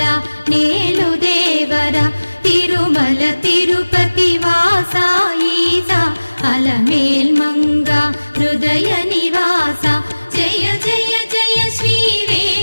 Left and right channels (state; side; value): inverted; both; correlation -1.00